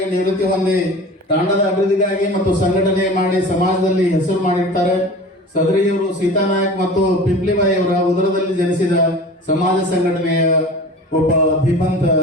ನಿವೃತ್ತಿ ಹೊಂದಿ ತಾಂಡದ ಅಭಿವೃದ್ಧಿಗಾಗಿ ಮತ್ತು ಸಂಘಟನೆ ಮಾಡಿ ಸಮಾಜದಲ್ಲಿ ಹೆಸರು ಮಾಡಿರ್ತಾರೆ. ಸದರಿಯವರು ಸೀತಾನಾಯಕ್ ಮತ್ತು ಪಿಂಪ್ಲಿಬಾಯಿ ಅವರ ಉದರದಲ್ಲಿ ಜನಿಸಿದ ಸಮಾಜ ಸಂಘಟನೆಯ ಒಬ್ಬ ಧೀಮಂತ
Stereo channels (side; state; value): both; normal; correlation 0.38